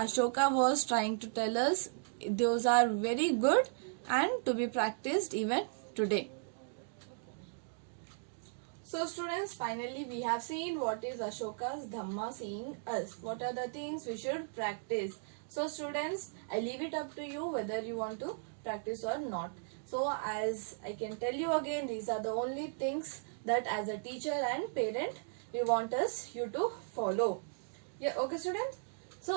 was trying to tell us, those are very good and to be practiced even today. So students, finally we have seen what is Ashoka's Dhamma saying us. What are the things we should practice. So students, I leave it up to you whether you want to practice or not. So So as I can tell you again, these are the only things that as a teacher and parent we want you to follow. Yeah, okay students.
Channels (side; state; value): left; silent; digital silence